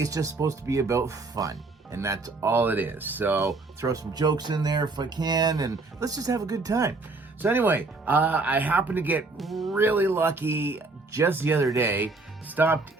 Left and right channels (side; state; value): left; quieter; 3.5 dB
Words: it's just supposed to be about fun, and that's all it is. So throw some jokes in there if I can, and let's just have a good time. So anyway, I happened to get really lucky just the other day. Stopped